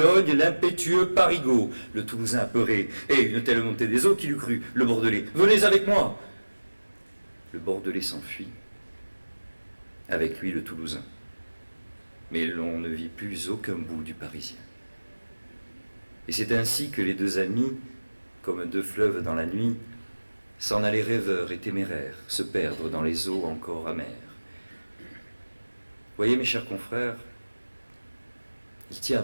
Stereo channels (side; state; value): both; inverted; correlation -1.00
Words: l'impétueux Parigot. Le Toulousain apeuré, et une telle montée des eaux qu'il eût cru. Le Bordelais, venez avec moi. Le Bordelais s'enfuit. avec lui le Toulousain. Mais l'on ne vit plus aucun bout du Parisien. Et c'est ainsi que les deux amis, comme deux fleuves dans la nuit, s'en allaient rêveurs et téméraires, se perdre dans les eaux encore amères. Voyez, mes chers confrères, il tient un